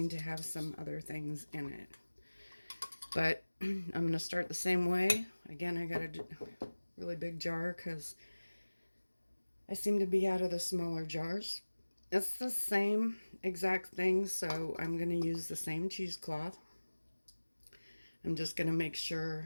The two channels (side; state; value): both; inverted; correlation -1.00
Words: to have some other things in it. But I'm going to start the same way. Again, I got a really big jar because I seem to be out of the smaller jars. It's the same exact thing, so I'm going to use the same cheesecloth. I'm just going to make